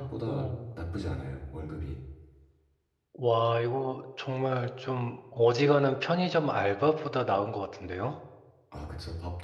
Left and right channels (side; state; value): both; identical; correlation 1.00